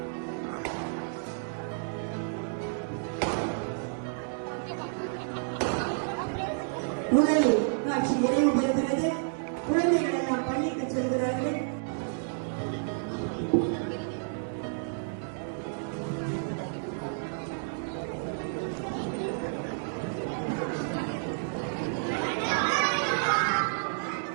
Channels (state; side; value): silent; left; digital silence